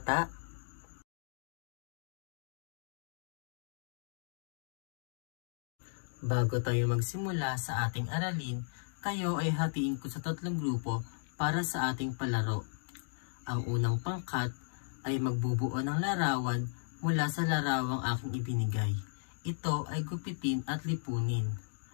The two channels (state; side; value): silent; right; digital silence